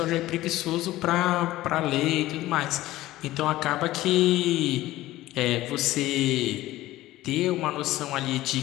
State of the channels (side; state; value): right; quieter; 16.3 dB